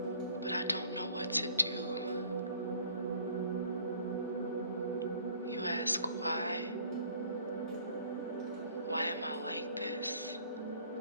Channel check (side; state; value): both; inverted; correlation -0.56